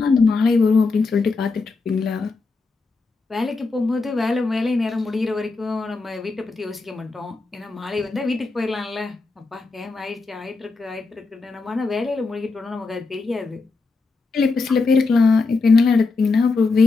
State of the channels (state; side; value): quieter; right; 4.0 dB